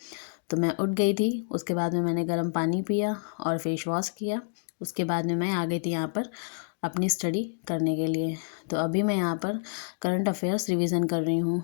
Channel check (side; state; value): right; silent; digital silence